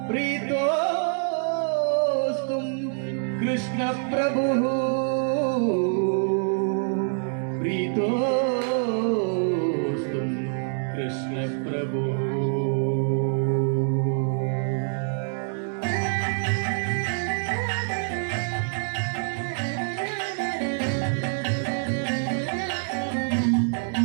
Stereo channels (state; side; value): silent; left; digital silence